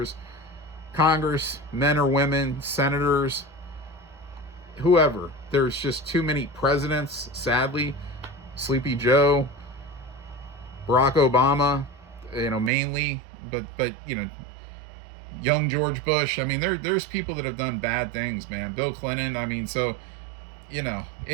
Congress, men or women, senators, whoever, there's just too many presidents, sadly. Sleepy Joe, Barack Obama, mainly, but young George Bush. I mean, there's people that have done bad things, man. Bill Clinton. So,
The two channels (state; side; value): drops out; left; at 12.7 s